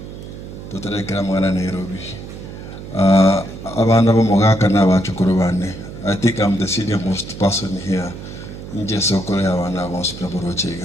Tutarekera mwana Nairobi. Abana bo Mogaka na bachukuru bane. I think I'm the senior most person here. Nje sokole abana bo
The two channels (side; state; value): right; noise; hum, 12 dB below the sound